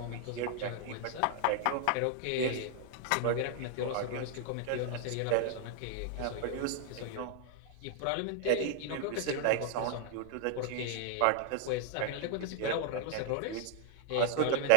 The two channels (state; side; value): different; both; correlation 0.00